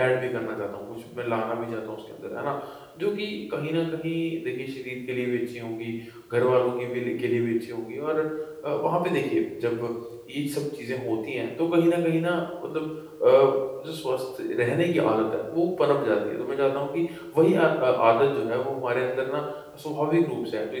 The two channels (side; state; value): both; identical; correlation 1.00